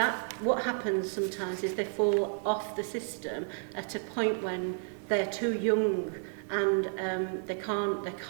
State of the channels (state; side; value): silent; left; 57 dB below the other